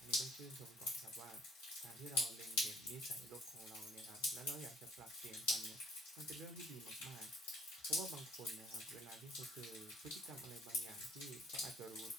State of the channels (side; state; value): both; normal; correlation 0.57